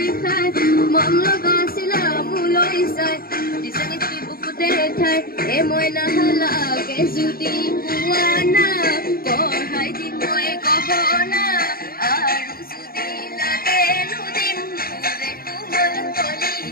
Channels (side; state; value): right; late; 0.43 ms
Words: খাই মম লগাইছিলা মোলৈ চাই দিছে নেকি বুকুতে ঠাই এ মই নাহালাগে যদি পোৱা না পঢ়াই দিম মই গহনা আৰু যদি লাগে নুদিম মোৰে কোমল